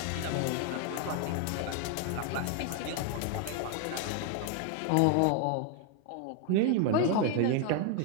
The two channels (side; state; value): both; different; correlation 0.00